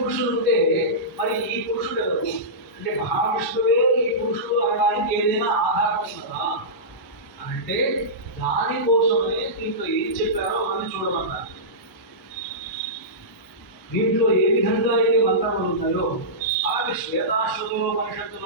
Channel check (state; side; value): normal; both; correlation -0.17